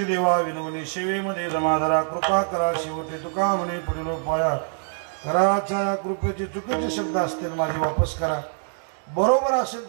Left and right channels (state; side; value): silent; left; digital silence